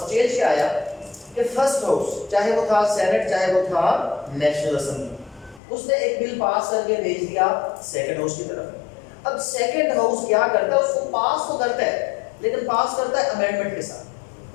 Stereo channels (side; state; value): right; drops out; at 5.6 s